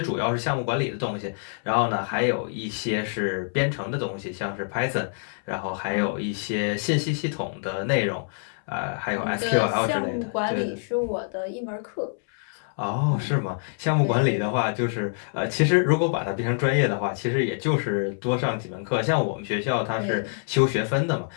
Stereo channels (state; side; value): silent; right; 61 dB below the other